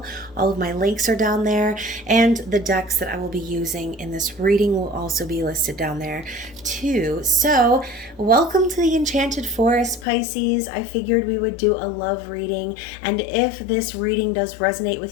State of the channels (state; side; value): drops out; right; at 10.1 s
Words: All of my links are down there, and the decks that I will be using in this reading will also be listed down there too. So welcome to the Enchanted Forest, Pisces. I figured we would do a love reading, and if this reading does resonate